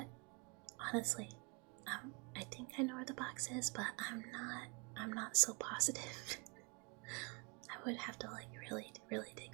honestly, I think I know where the box is, but I'm not so positive. I would have to like really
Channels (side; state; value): left; quieter; 31.5 dB